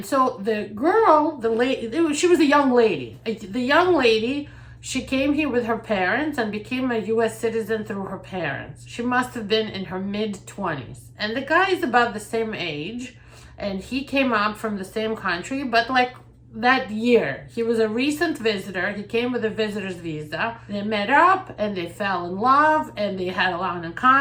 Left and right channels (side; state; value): both; identical; correlation 1.00